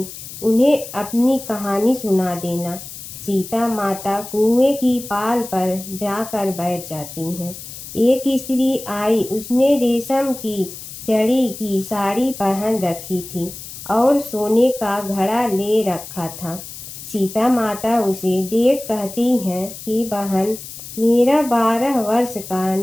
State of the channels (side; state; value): left; noise; hiss, 12 dB below the sound